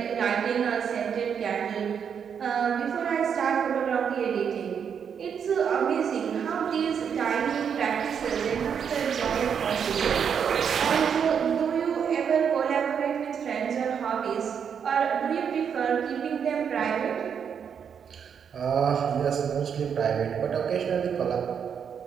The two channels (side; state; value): left; quieter; 7.4 dB